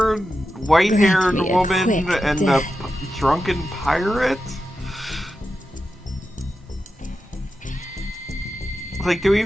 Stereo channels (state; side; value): normal; both; correlation 0.90